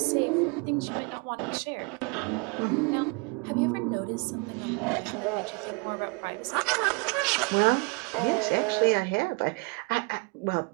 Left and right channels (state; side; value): quieter; left; 30.2 dB